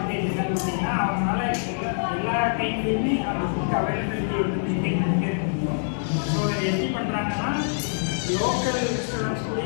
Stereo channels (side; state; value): right; silent; digital silence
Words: என்னன்னு பார்த்தீங்கன்னா அவங்களால எல்லா டைம்லையுமே அந்த food availability வந்து maintain பண்ணிட்டே இருக்க முடியும். So இதை எப்படி பண்ணுறாங்கன்னா லோக்கல் ரெஸ்டாரண்ட்ஸ்